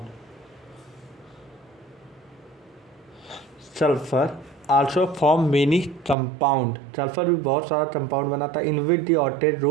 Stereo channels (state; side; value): drops out; left; at 6.2 s